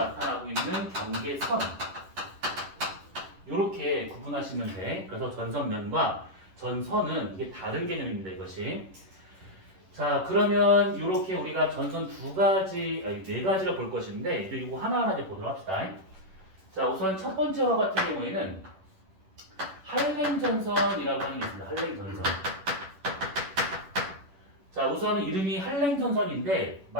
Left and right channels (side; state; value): left; late; 11 ms